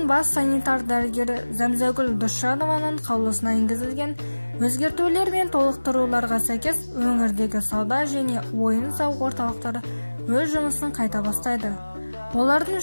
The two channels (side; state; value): both; inverted; correlation -1.00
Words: бас санитар дәрігері Зәмзәгүл Досжанованың қаулысына енгізілген өзгертулер мен толықтыруларға сәйкес өңірдегі сауда және ойын-сауық орталықтары өз жұмысын қайта бастайды. Олардың